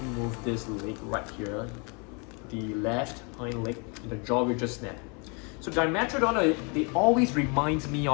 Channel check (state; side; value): quieter; right; 33.6 dB